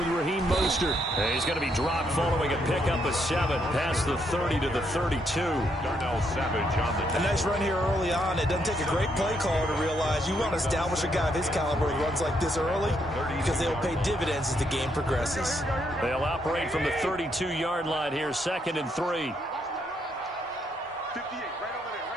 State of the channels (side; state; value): both; normal; correlation 0.75